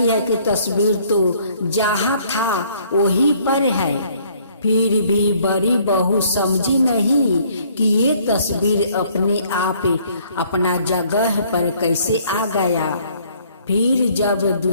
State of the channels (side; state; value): both; inverted; correlation -0.61